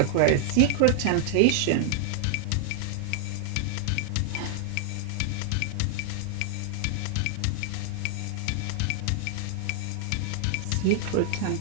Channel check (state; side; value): different; both; correlation -0.01